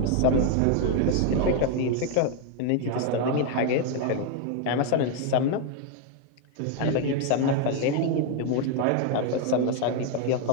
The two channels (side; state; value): both; different; correlation 0.01